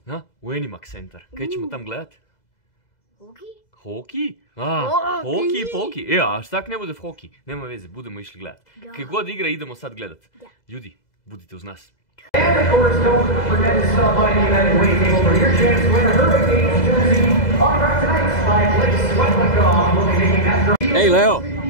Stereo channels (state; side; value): late; right; 2.0 ms